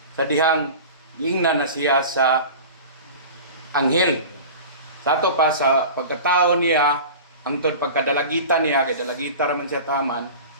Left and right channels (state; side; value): inverted; both; correlation -0.35